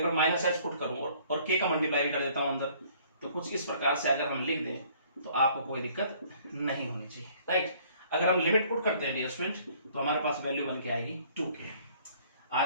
पर माइनस एच पुट करूँ और k का मल्टीप्लाई भी कर देता हूँ अंदर, तो कुछ इस प्रकार से अगर हम लिख दें तो आपको कोई दिक्कत नहीं होनी चाहिए, राइट। अगर हम लिमिट पुट करते हैं डियर स्टूडेंट तो हमारे पास वैल्यू बन के आएगी 2k।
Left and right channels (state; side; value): inverted; both; correlation -0.58